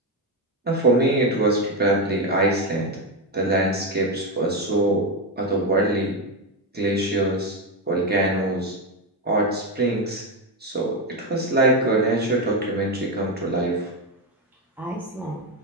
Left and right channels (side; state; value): both; normal; correlation 0.10